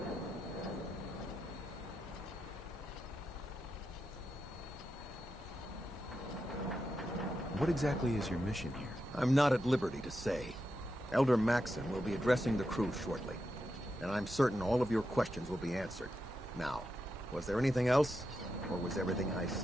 What exactly is your mission here? I'm not at liberty to say. Elder Maxon will be addressing the crew shortly, and I'm certain all of your questions will be answered. Now, was there anything else, or was everything I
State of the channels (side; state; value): both; normal; correlation 0.87